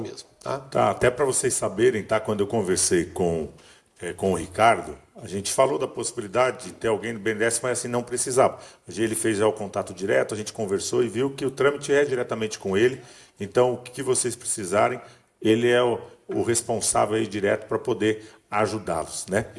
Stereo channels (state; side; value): identical; both; correlation 1.00